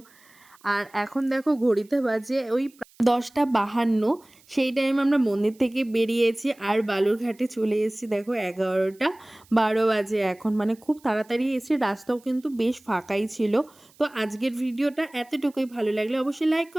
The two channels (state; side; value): noise; right; hiss, 29 dB below the sound